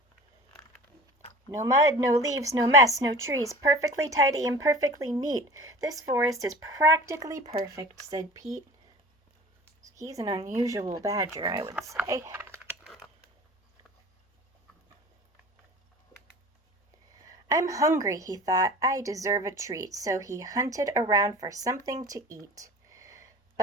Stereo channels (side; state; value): both; normal; correlation 0.39